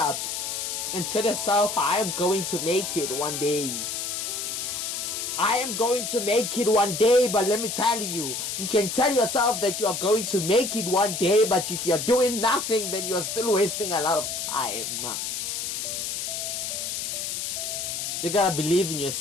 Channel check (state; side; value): noise; left; hiss, 3 dB below the sound